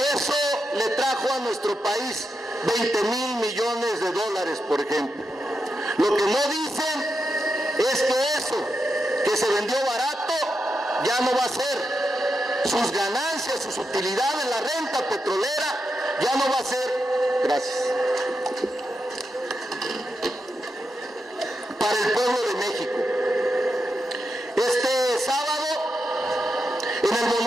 eso le trajo a nuestro país 20,000 millones de dólares, por ejemplo. Lo que no dicen es que eso que se vendió barato ya no va a ser. Sus ganancias, sus utilidades, la renta petrolera ya no va a ser, gracias, para el pueblo de México. Este sábado, en el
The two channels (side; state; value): both; normal; correlation 0.86